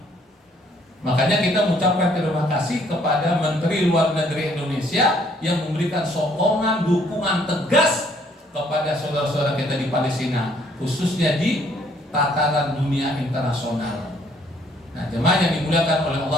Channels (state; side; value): normal; both; correlation 0.64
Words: Makanya kita mengucapkan terima kasih kepada Menteri Luar Negeri Indonesia yang memberikan sokongan, dukungan tegas kepada saudara-saudara kita di Palestina, khususnya di tataran dunia internasional. Nah, jemaah yang dimuliakan oleh